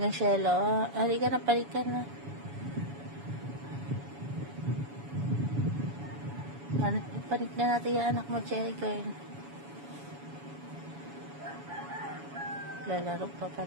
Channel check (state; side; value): late; left; 7.1 ms